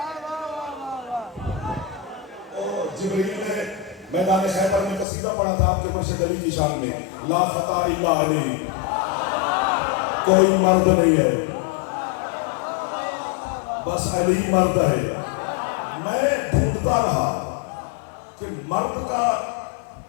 جبریل نے میدان خیبر میں قصیدہ پڑھا تھا آپ کے مرشد علی کی شان میں. لا فتح الا علی، کوئی مرد نہیں ہے بس علی مرد ہے. میں ڈھونڈتا رہا کہ مرد کا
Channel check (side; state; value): right; drops out; at 5.1 s